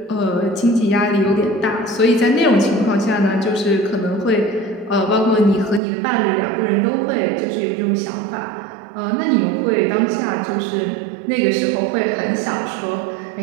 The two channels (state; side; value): drops out; left; at 5.8 s